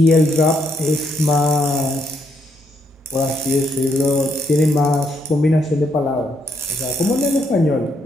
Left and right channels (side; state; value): both; normal; correlation 0.75